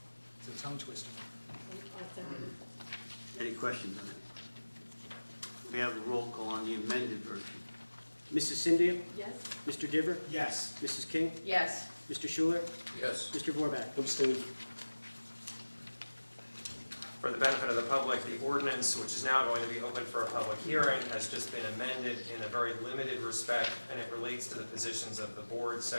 It's a tongue twister. Any questions on it? We have a roll call on the amended version. Mrs. Cynthia? Yes. Mr. Diver? Yes. Mrs. King? Yes. Mr. Schuler? Yes. Mr. Warback? Abstain. For the benefit of the public, the ordinance, which is now going to be open for a public hearing, has just been amended in a very limited respect, and it relates to the positions of the board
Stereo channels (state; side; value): inverted; both; correlation -1.00